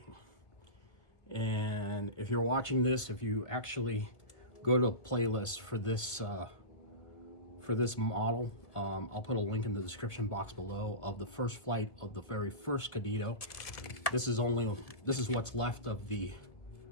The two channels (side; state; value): right; late; 1.7 ms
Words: And if you're watching this, if you actually go to a playlist for this model, I'll put a link in the description box below of the first flight of the very first Kadetito. This is what's left of the